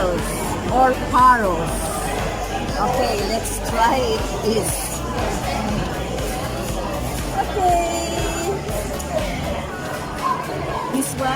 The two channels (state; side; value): identical; both; correlation 1.00